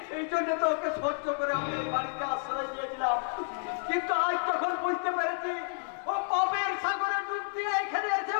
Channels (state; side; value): silent; right; 58 dB below the other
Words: এই জন্য তো ওকে সহ্য করে আমি এই বাড়িতে আশ্রয় দিয়েছিলাম। কিন্তু আজ যখন বুঝতে পেরেছি ও পাপের সাগরে ডুব দিয়ে এখানে এসে